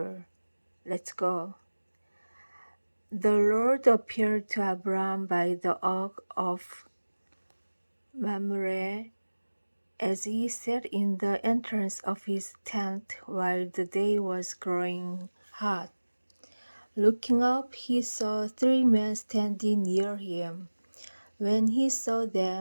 Let's go. The Lord appeared to Abram by the oak of Mamre as he sat in the entrance of his tent while the day was growing hot. Looking up, he saw 3 men standing near him. When he saw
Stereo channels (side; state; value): both; inverted; correlation -1.00